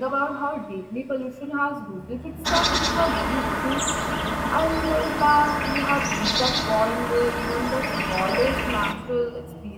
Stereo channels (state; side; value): identical; both; correlation 1.00